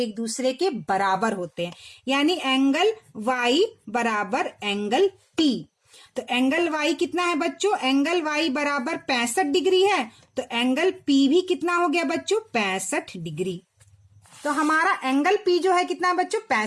दूसरे के बराबर होते हैं, यानी एंगल वाई बराबर एंगल पी। तो एंगल वाई कितना है बच्चों, एंगल वाई बराबर 65 डिग्री है, तो एंगल पी भी कितना हो गया बच्चों 65 डिग्री। तो हमारा एंगल पी जो है कितना है बच्चों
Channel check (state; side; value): identical; both; correlation 1.00